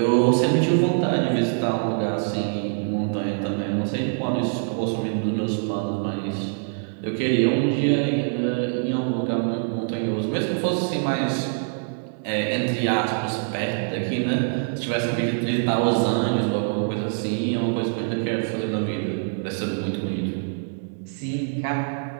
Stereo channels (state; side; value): silent; left; digital silence